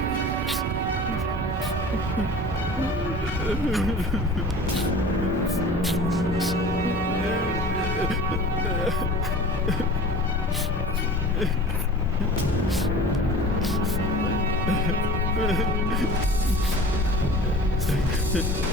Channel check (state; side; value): normal; both; correlation 0.40